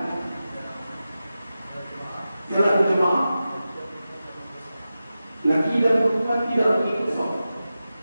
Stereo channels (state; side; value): inverted; both; correlation -0.93